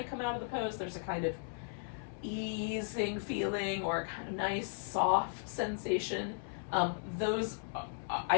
come out of the pose, there's a kind of easing feeling or a kind of nice soft sensation, those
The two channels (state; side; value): silent; right; 54 dB below the other